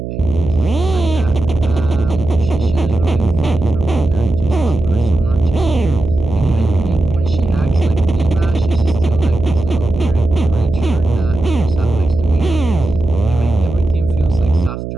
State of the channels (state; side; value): noise; right; hum, 7 dB below the sound